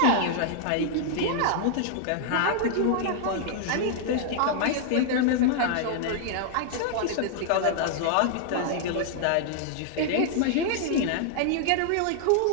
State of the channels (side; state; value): both; different; correlation -0.01